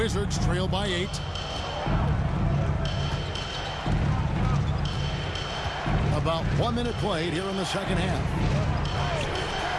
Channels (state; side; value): identical; both; correlation 1.00